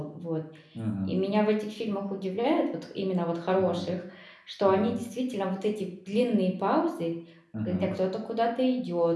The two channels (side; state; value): both; identical; correlation 1.00